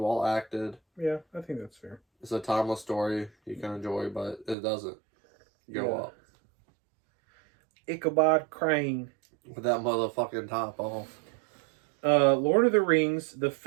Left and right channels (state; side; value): drops out; left; at 4.5 s